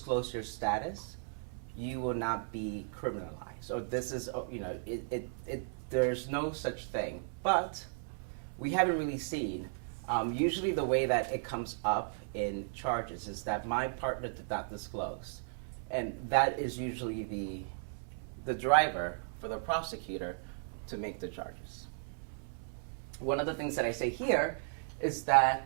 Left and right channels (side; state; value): left; silent; 54 dB below the other